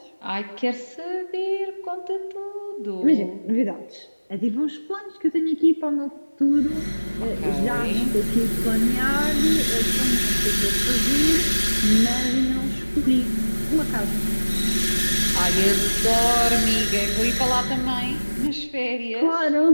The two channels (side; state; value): both; inverted; correlation -1.00